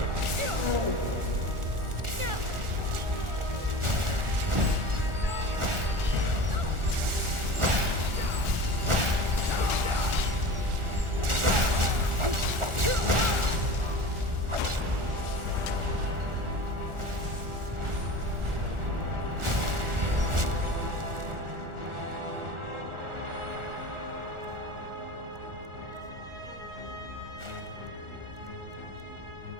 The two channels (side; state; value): left; late; 1.4 ms